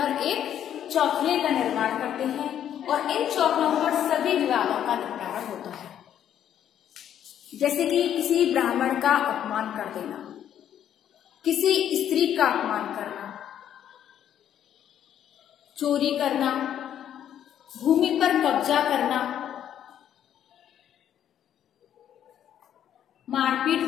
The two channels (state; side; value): quieter; right; 10.1 dB